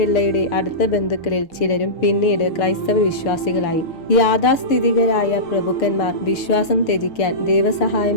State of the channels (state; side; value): late; right; 6.9 ms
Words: അടുത്ത ബന്ധുക്കളിൽ ചിലരും പിന്നീട് ക്രൈസ്തവ വിശ്വാസികളായി. യാഥാസ്ഥിതികരായ പ്രഭുക്കന്മാർ വിശ്വാസം ത്യജിക്കാൻ